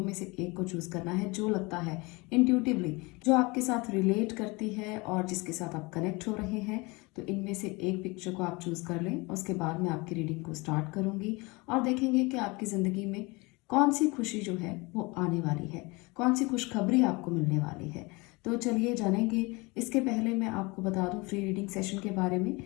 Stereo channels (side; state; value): right; quieter; 25.6 dB